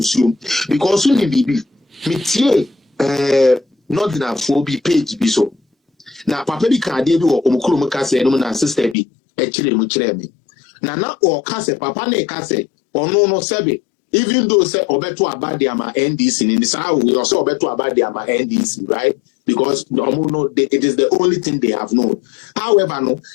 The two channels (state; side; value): drops out; right; at 9.0 s